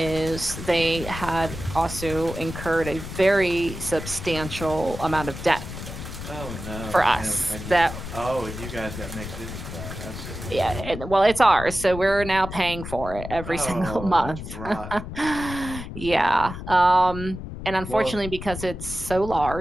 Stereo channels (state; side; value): noise; left; rumble, 9 dB below the sound